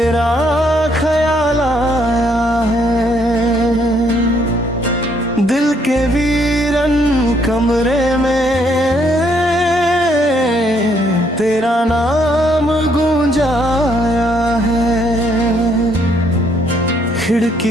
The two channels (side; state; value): both; normal; correlation 0.70